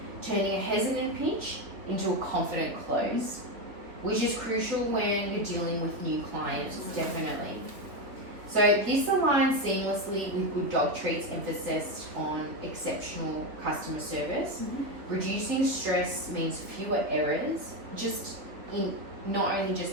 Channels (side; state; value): left; late; 3.5 ms